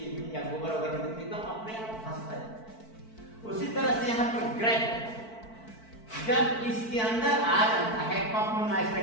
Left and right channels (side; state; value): right; late; 4.5 ms